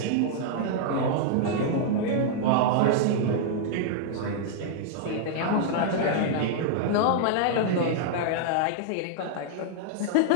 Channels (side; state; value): both; different; correlation -0.01